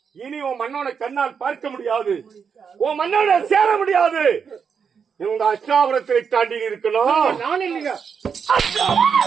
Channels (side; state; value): left; quieter; 6.5 dB